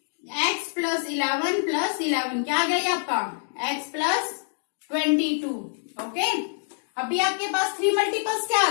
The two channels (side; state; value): right; silent; digital silence